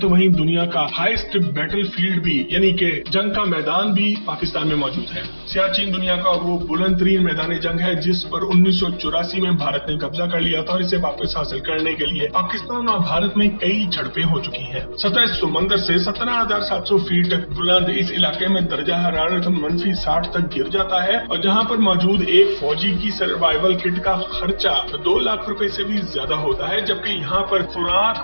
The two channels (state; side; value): inverted; both; correlation -1.00